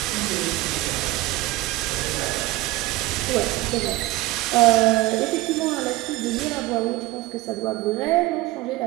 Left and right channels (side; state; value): left; quieter; 18.3 dB